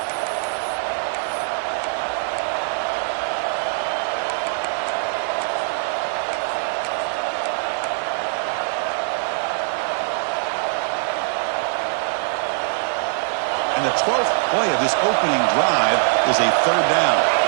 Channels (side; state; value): left; silent; digital silence